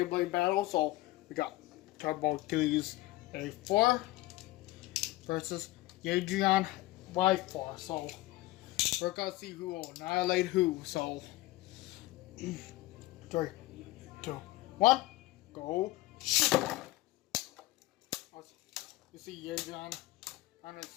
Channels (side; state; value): right; quieter; 18.4 dB